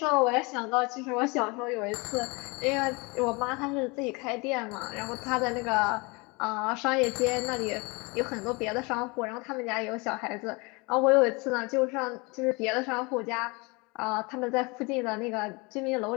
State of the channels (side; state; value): right; quieter; 27.5 dB